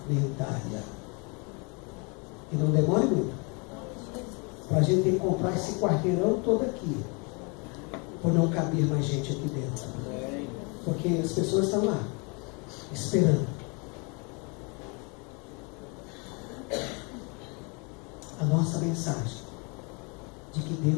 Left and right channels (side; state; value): right; quieter; 32.6 dB